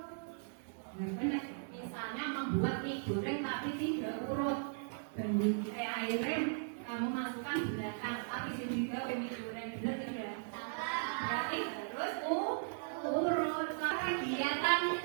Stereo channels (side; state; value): left; silent; 53 dB below the other